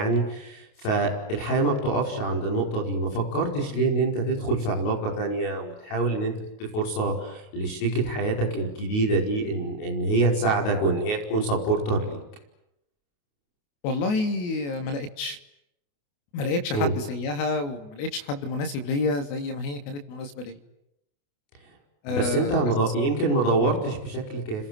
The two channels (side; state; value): right; late; 28 ms